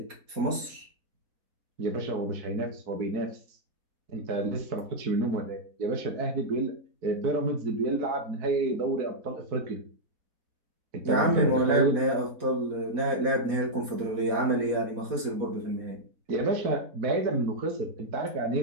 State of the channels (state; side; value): late; left; 4.1 ms